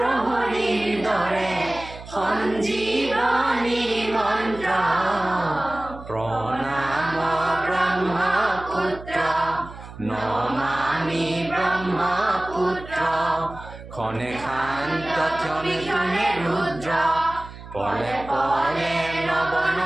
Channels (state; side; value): noise; right; hum, 15 dB below the sound